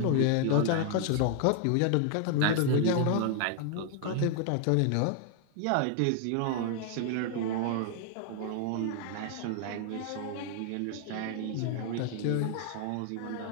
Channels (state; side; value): different; both; correlation 0.00